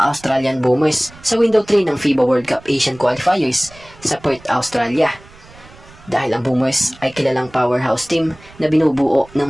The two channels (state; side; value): noise; right; rumble, 23 dB below the sound